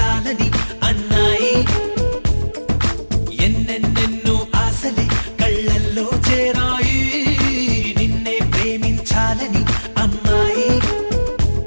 అన్నాయి ఎన్నెన్నెన్నో ఆశలే కళ్ళల్లో చేరాయి నిన్నే ప్రేమించాలని అమ్మాయి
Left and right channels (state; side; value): inverted; both; correlation -1.00